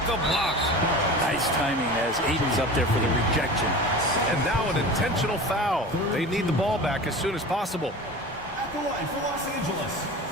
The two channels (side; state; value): both; normal; correlation 0.35